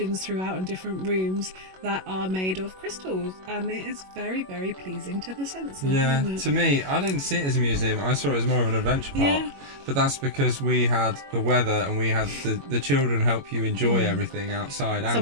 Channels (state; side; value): late; left; 21 ms